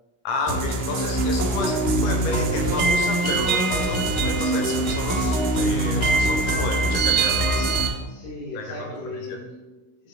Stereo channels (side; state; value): right; late; 16 ms